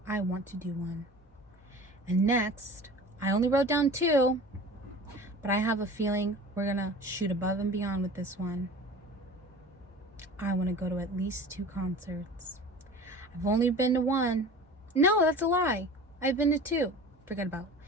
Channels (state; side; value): normal; both; correlation 0.39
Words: I want to do one. And next, I only wrote down 2, but I have a feeling we're gonna shoot above and beyond with this one. I want to go to at least 2 concerts. I've only been to 1. No, that's a lie. I've been to 2. Forget about